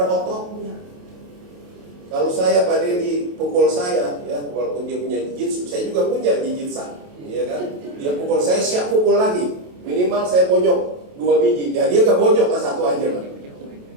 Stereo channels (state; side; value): late; left; 28 ms